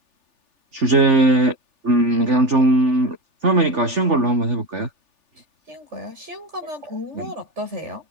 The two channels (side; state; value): left; late; 3.4 ms